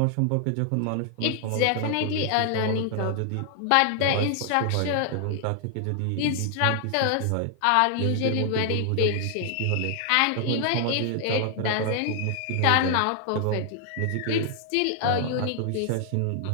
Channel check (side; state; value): both; different; correlation 0.00